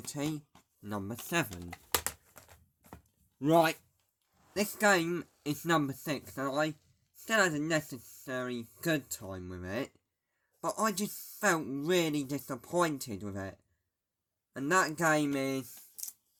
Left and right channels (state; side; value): identical; both; correlation 1.00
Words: number 7. Right, this game is number 6, and I still had a necessary good time with it, but I just felt really disappointed with it. And that game is